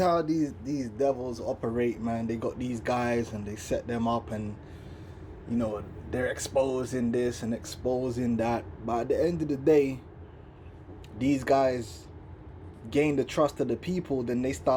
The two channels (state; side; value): identical; both; correlation 1.00